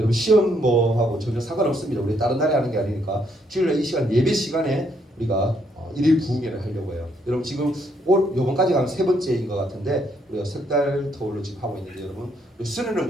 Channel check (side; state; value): both; normal; correlation 0.72